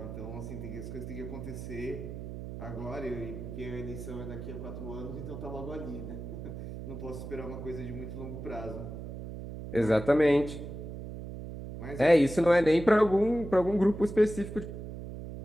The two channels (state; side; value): noise; right; hum, 9 dB below the sound